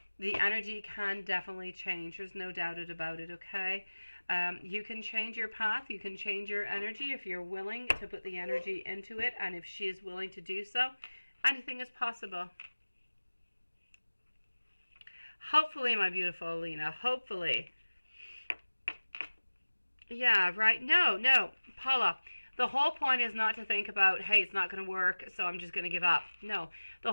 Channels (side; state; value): both; inverted; correlation -1.00